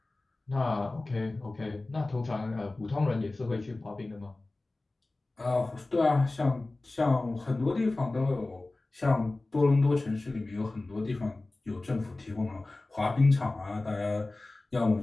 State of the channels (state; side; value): quieter; right; 3.0 dB